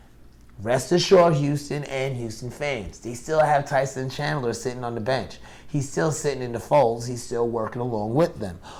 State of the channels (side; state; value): both; identical; correlation 1.00